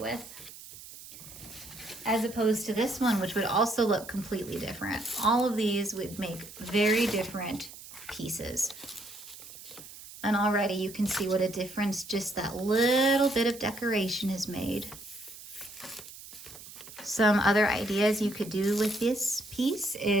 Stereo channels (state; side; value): noise; right; hiss, 16 dB below the sound